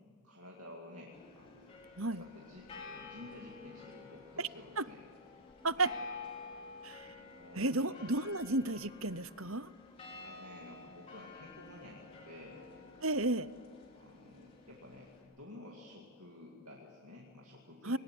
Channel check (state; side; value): normal; both; correlation -0.04